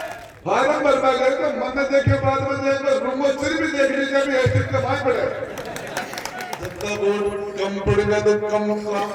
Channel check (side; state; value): both; identical; correlation 1.00